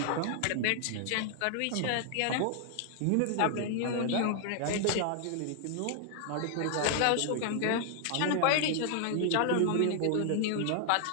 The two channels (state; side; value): different; both; correlation 0.00